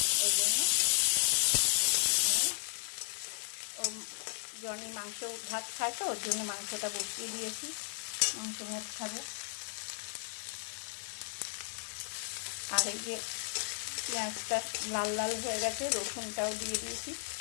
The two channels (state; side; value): silent; right; digital silence